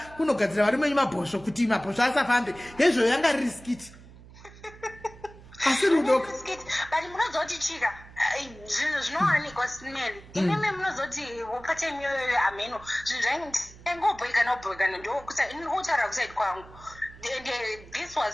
varume venyu mabhosvo kuti mabhosvo asafambe hezvo yanga riskiti asi rudo but munozoti chika zvinhu zvinowanikwa smell ineme munozoti patime iyoyo ameno zvinhu zvaingobhoikana ndoutaura kusaidi kwangu. And this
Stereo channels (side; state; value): right; noise; hum, 20 dB below the sound